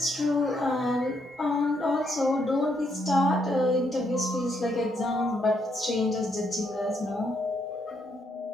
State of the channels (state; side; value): normal; both; correlation 0.75